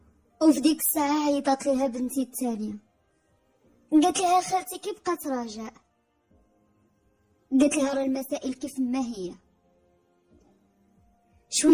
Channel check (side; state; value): both; identical; correlation 1.00